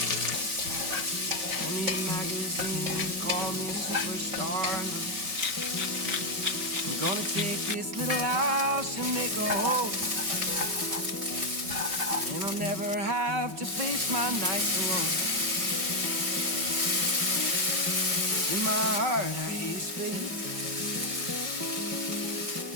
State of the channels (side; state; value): left; late; 5.3 ms